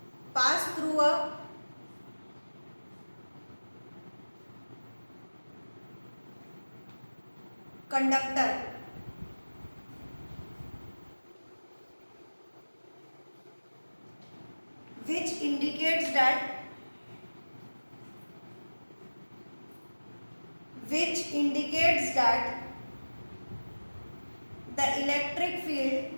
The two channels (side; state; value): both; inverted; correlation -1.00